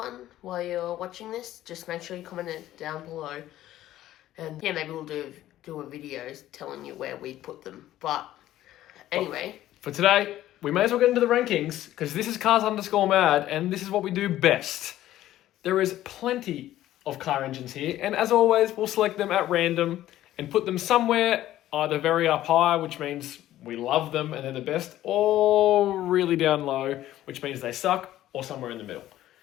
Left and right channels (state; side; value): quieter; right; 13.7 dB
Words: while you're watching this, just make sure you comment it down below. And yeah, maybe we'll do a video telling you where we put them. But anyway. For today, we may as well get into the rankings because this is Cars_Mad and this is what we do best. There is plenty of car engines here, and as always, we'll select them at random and put them somewhere either very up high, which means we love them and they're the best, or really down low, which means they suck, or somewhere in the middle.